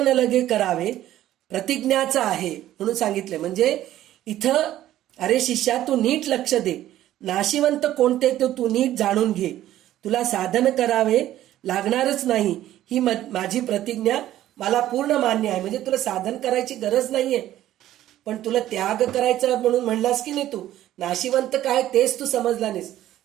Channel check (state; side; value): quieter; left; 13.3 dB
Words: लगे करावे प्रतिज्ञाचं आहे म्हणून सांगितले. म्हणजे इथं अरे शिष्या तू नीट लक्ष दे, नाशिवंत कोणते ते तू नीट जाणून घे, तुला साधन करावे लागणारच नाही ही माझी प्रतिज्ञा मला पूर्ण मान्य आहे. म्हणजे तुला साधन करायची गरज नाहीये, पण तुला त्याग करायचा म्हणून म्हणलास की नाही, तू नाशिवंत काय तेच तू समजला नाहीस.